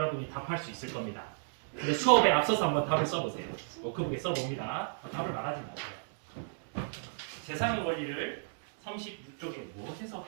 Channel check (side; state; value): left; silent; digital silence